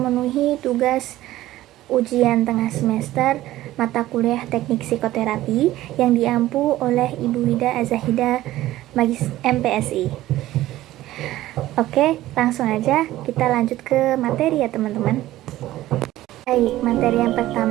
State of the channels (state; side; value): quieter; left; 15.4 dB